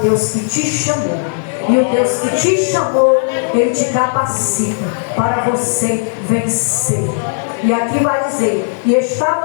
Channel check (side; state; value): right; silent; digital silence